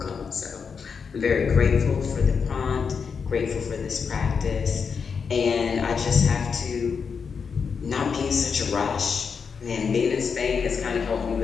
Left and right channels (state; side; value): quieter; right; 5.9 dB